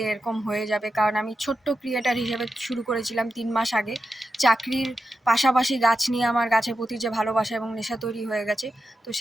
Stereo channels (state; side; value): normal; both; correlation 0.89